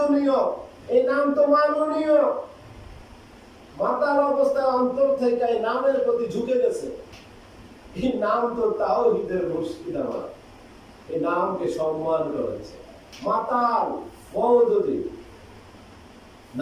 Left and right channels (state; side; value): identical; both; correlation 1.00